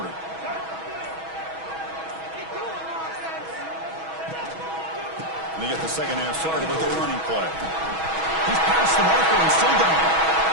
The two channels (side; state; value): left; late; 6.2 ms